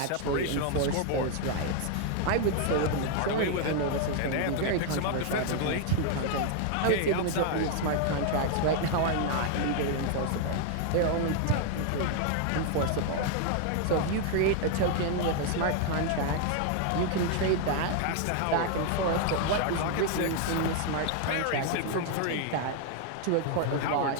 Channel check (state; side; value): different; both; correlation 0.00